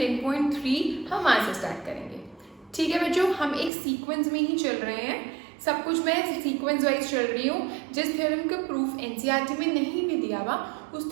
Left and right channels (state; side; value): drops out; left; at 3.7 s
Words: हम वहाँ से स्टार्ट करेंगे। ठीक है बच्चों, हम एक सीक्वेंस में ही चल रहे हैं, सब कुछ मैं सीक्वेंस वाइज चल रही हूँ। जिस थ्योरम का प्रूफ एनसीईआरटी में नहीं भी दिया हुआ